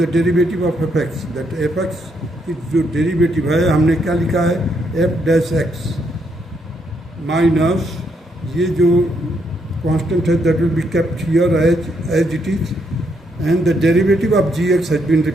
derivative of f x, that f x की जो डेरिवेटिव है हमने क्या लिखा है, एफ डैश एक्स माइनस ये जो कांस्टेंट है that will be kept here as it is, and the derivative of g x has been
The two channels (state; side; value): normal; both; correlation 0.75